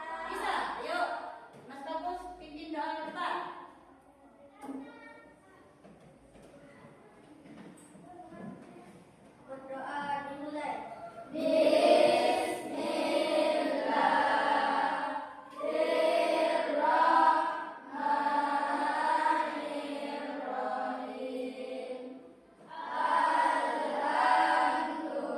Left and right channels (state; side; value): identical; both; correlation 1.00